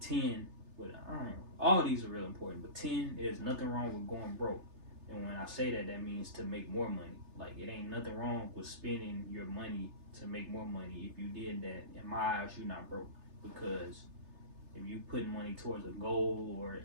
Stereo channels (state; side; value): late; left; 3.3 ms